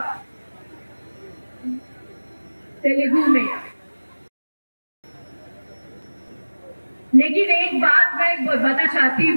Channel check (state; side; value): inverted; both; correlation -1.00